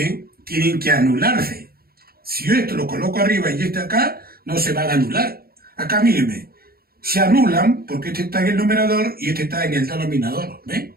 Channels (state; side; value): late; left; 0.44 ms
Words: tienen que anularse. Si yo esto lo coloco arriba y este acá, no se van a anular. Acá, mírenme, se anulan porque este está en el numerador y este está en el denominador, ¿ven?